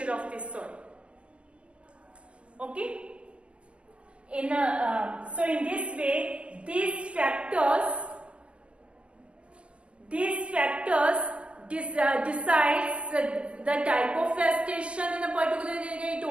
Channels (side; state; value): left; late; 0.059 ms